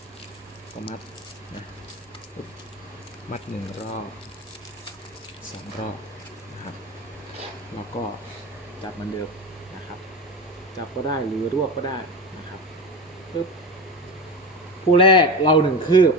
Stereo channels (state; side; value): normal; both; correlation 0.25